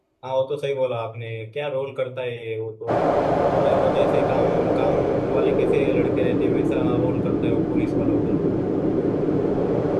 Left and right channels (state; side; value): identical; both; correlation 1.00